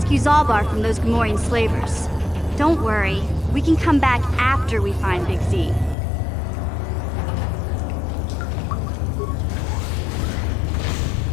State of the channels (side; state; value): right; drops out; at 6.0 s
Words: Zalbar from those Gamorrean slavers. Don't worry, we can come back after we find Big Z.